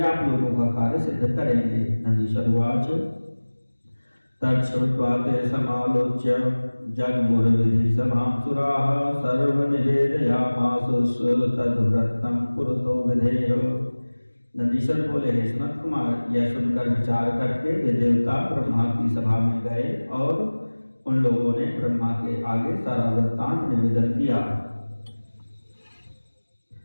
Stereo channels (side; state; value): both; inverted; correlation -1.00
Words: आप लोगों का कार्य सिद्ध करेंगे। नंदीश्वरवाच तच्छ्रुत्वा ते समालोच्य जगमुर्विधि सभां सुराः सर्वनिवेदयामासुः तद्व्रतं पुरतो विधेय। नंदीश्वर बोले, हे सनत कुमार, यह सुनकर विचार करके वे देवता ब्रह्मा की सभा में गए और उन लोगों ने ब्रह्मा के आगे सारा वृत्तांत निवेदन किया।